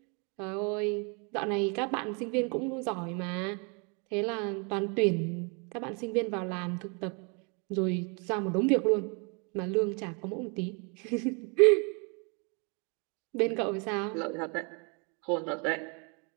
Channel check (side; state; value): left; quieter; 34.4 dB